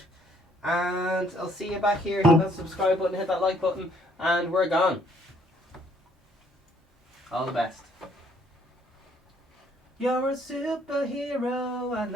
And I'll see you back here. Hit that subscribe button, hit that like button, and we're gone. All the best. You're a superhero and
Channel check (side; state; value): both; normal; correlation 0.64